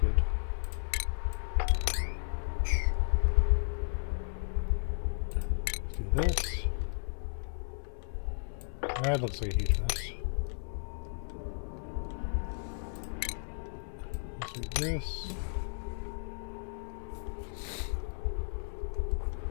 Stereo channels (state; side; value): silent; right; digital silence